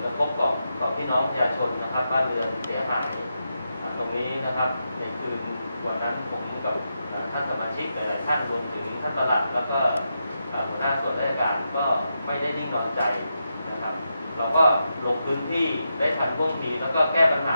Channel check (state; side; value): inverted; both; correlation -0.86